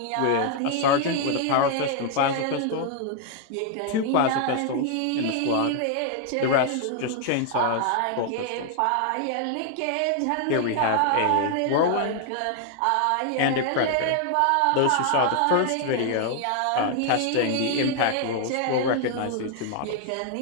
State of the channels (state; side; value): different; both; correlation 0.00